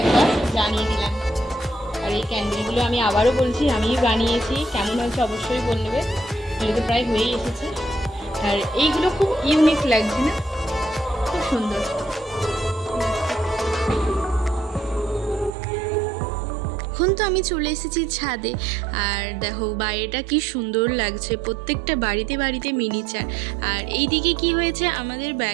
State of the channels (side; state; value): left; drops out; at 15.5 s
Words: জানিয়ে দিলাম। আর এই ক্যান্ডেলগুলো আমি আবারও বলছি আমিই বানিয়েছি, কেমন হয়েছে অবশ্যই বলবে। এগুলো তো প্রায় হয়েই এসেছে। আর এইগুলো খুব ইউনিক লাগছে না, খুব সুন্দর। এখন তো আমি চলে এসেছি ছাদে, আর দেখো বাইরেটা কি সুন্দর লাগছে, প্রত্যেকটা বাড়িতে বাড়িতে মিনিচার। আর এই দিকে কি হয়েছে, আমাদের